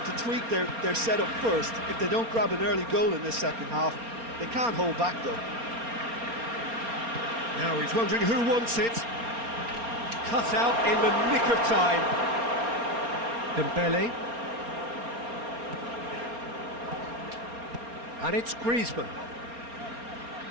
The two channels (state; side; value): late; left; 4.3 ms